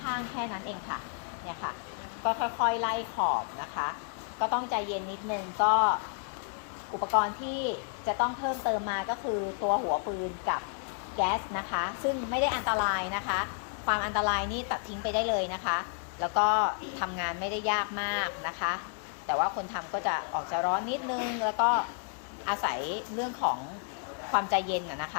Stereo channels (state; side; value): silent; right; 57 dB below the other